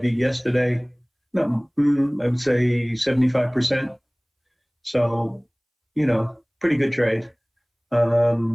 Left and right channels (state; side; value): identical; both; correlation 1.00